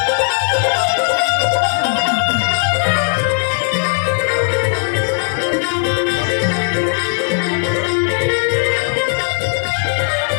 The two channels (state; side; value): silent; right; 58 dB below the other